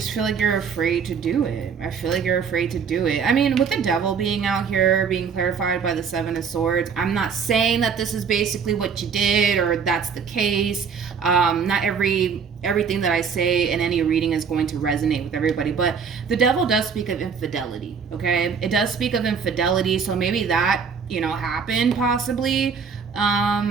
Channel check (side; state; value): left; quieter; 6.3 dB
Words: feel like you're afraid to do it. I feel like you're afraid to do it. I mean, with the Devil being out here, being clarified by the 7 of Swords, I'm not saying that this is basically what you did or that's the case. Not everything that I say in any reading is going to resonate with everybody, but the Devil does speak of infidelity, okay? It does speak of infidelity, so maybe that, you know, happened possibly.